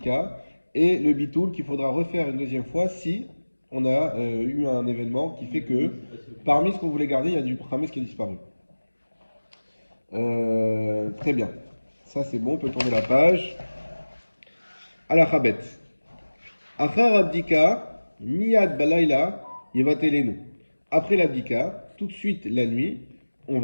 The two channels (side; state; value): both; inverted; correlation -1.00